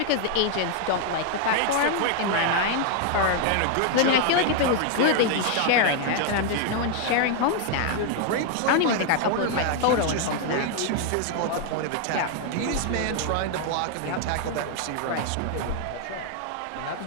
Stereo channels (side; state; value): both; different; correlation 0.00